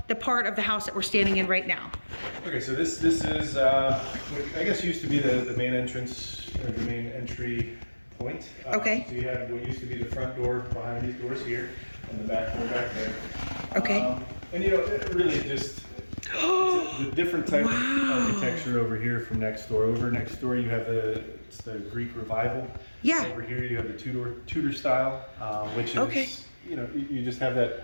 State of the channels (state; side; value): inverted; both; correlation -1.00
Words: the part of the house that we're standing in right now. Okay, so this is, I guess used to be the main entrance, or the main entry point. Okay. So you had what used to be the front door behind these doors here, and the back door back there. Okay. And it really just, it's a different type of architecture over here from next door. Over next door you have the Greek Revival. Yeah. Over here you have the Tudor style, which is you just have that